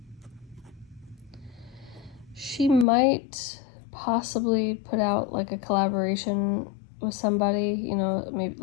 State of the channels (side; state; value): right; drops out; at 2.9 s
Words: She might possibly put out like a collaboration with somebody, maybe